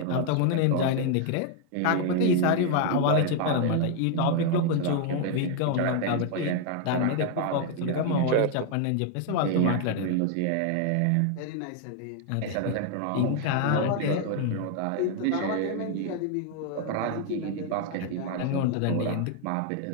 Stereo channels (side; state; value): both; different; correlation 0.00